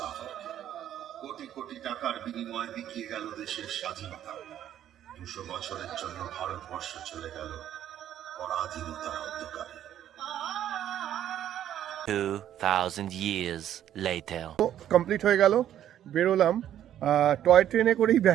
কোটি কোটি টাকার বিনিময়ে বিকিয়ে গেল দেশের স্বাধীনতা। 200 বছরের জন্য ভারতবর্ষ চলে গেল পরাধীনতার অন্ধকারে। 2000 years later. কমপ্লিট হয়ে গেল, বেরোলাম। টয় ট্রেনে করেই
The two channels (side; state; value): left; quieter; 11.1 dB